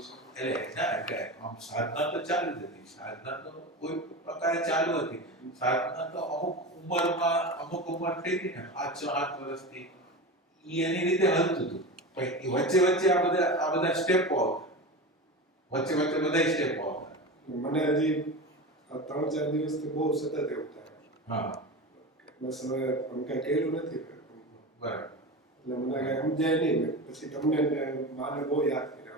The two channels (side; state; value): both; normal; correlation 0.26